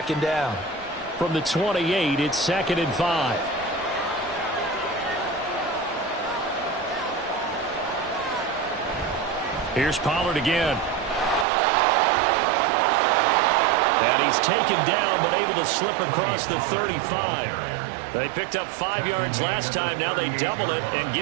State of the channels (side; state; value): left; drops out; at 11.5 s